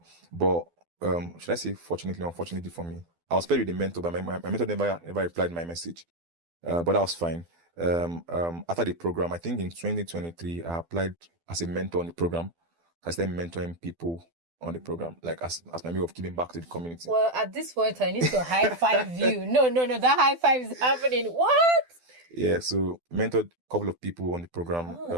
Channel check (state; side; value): late; left; 12 ms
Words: But should I say fortunately, unfortunately for me, I was paired with the mentor, but my mentor never replied my message. But that was fine. After the program, I think in 2023, I applied as a mentor on the program. I started mentoring people on the program, like as my way of giving back to the community. Well, at this point, I need to high five you. No, that high five is happening. What? Yeah, so mentored a couple of people on the program.